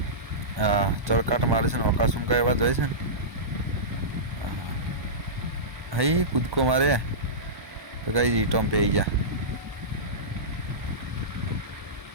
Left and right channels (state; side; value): late; left; 1.2 ms